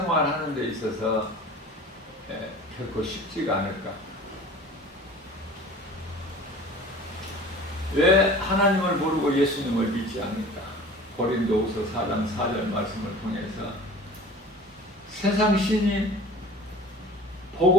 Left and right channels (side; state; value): both; normal; correlation 0.42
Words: 하는 데 있어서 결코 쉽지가 않을까? 왜 하나님을 모르고 예수님을 믿지 않을까? 고린도후서 4장 4절 말씀을 통해서 세상 신이